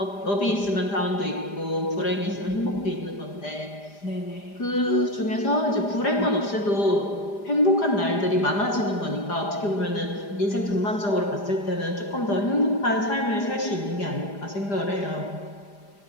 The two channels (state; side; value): late; right; 5.0 ms